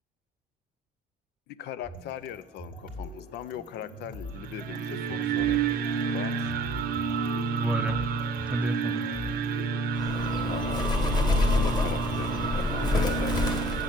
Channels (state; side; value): normal; both; correlation 0.52